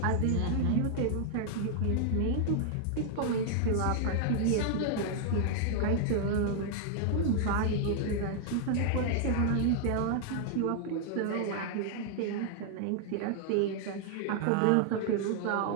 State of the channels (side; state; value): both; different; correlation 0.00